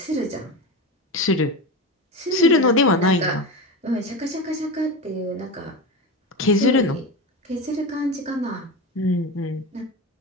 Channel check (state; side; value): normal; both; correlation 0.23